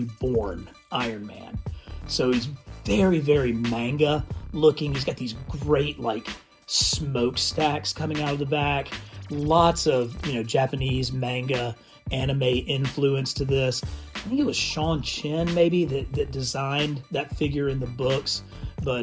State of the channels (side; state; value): both; identical; correlation 1.00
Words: Iron Man. So he's very, very manga looking. He's got these great like smokestacks coming out of the back. Lots of, Japanese manga anime influence to this. I think it was Sean Chen maybe that designed that figure in the books.